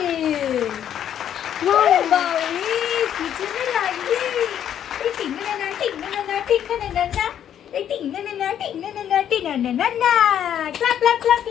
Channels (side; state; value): right; quieter; 9.9 dB